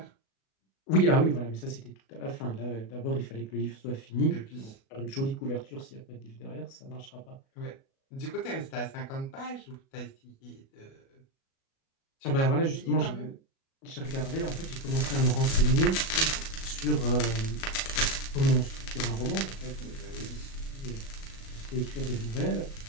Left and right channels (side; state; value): right; late; 37 ms